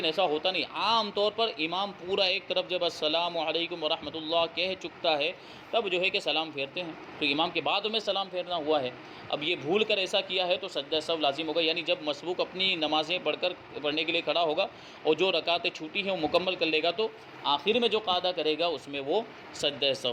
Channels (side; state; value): both; identical; correlation 1.00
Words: ایسا ہوتا نہیں، عام طور پر امام پورا ایک طرف جب السلام علیکم ورحمۃ اللہ کہہ چکتا ہے تب جو ہے کہ سلام پھیرتے ہیں، تو امام کے بعد میں سلام پھیرنا ہوا ہے۔ اب یہ بھول کر ایسا کیا ہے تو سجدہ سہو لازم ہوگا، یعنی جب مسبوق اپنی نمازیں پڑھنے کے لیے کھڑا ہوگا اور جو رکعتیں چھوٹی ہیں وہ مکمل کر لے گا تو آخر میں جو قاعدہ کرے گا اس میں وہ سجدہ